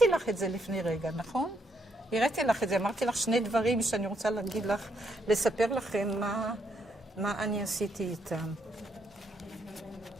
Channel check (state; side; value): normal; both; correlation 0.75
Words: לך את זה לפני רגע, נכון? הראיתי לך את זה, אמרתי לך 2 דברים שאני רוצה להגיד לך, לספר לכם מה אני עשיתי איתם.